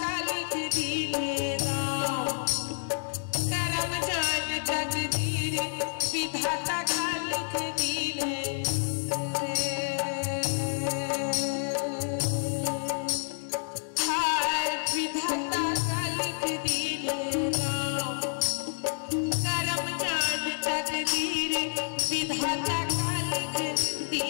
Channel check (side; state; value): right; silent; digital silence